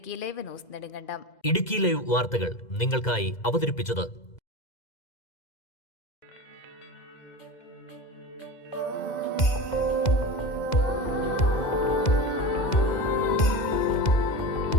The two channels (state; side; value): late; right; 2.0 ms